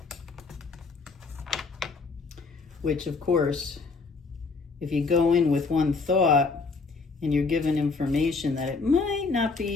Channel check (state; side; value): quieter; right; 4.3 dB